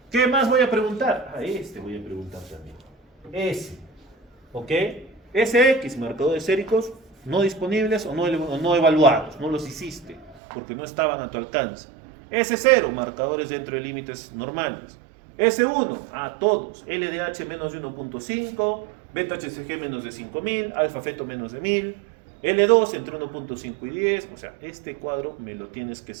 ¿Qué más voy a preguntar? Este voy a preguntar también. S. ¿Ok? SX, marcadores séricos no disponibles o no evaluados. No los hiciste porque no estaban a tu alcance. S0, marcadores dentro de límites normales. S1, todos. LDH menos de 1.5, beta HCG menos de 5000, alfa feto menos de 1000. L2 entre 1.5 y 10. O sea, este cuadro me lo tienes que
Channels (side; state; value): left; drops out; at 10.4 s